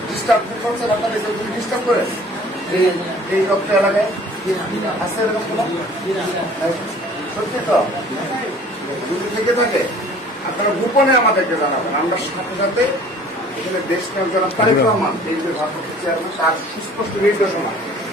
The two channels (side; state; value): both; normal; correlation 0.50